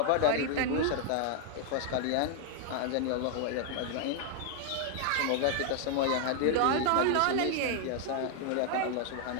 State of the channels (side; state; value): both; different; correlation 0.00